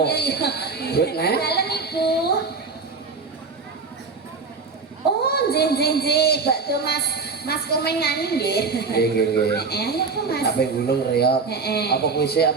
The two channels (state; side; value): quieter; left; 4.5 dB